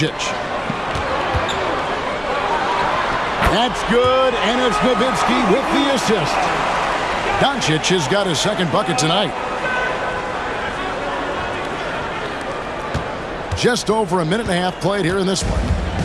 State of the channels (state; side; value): identical; both; correlation 1.00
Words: That's good, and it's Nowitzki with the assist. Doncic has got his second bucket tonight. Just over a minute and a half played here in this